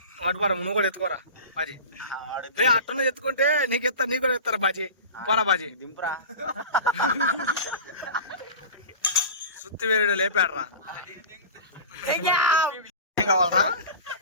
అటుపరా నువ్వు కూడా ఎత్తుకోరా బాజీ రే అట్టనే ఎత్తుకుంటే నీకు కూడా ఎత్తారా బాజీ పోరా బాజీ దింపురా సుత్తి వేరుడు లేపాడరా ఏం కావాలరా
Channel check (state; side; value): inverted; both; correlation -0.34